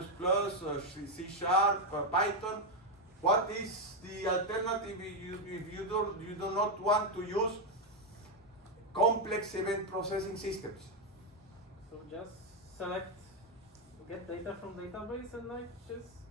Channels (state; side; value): normal; both; correlation 0.04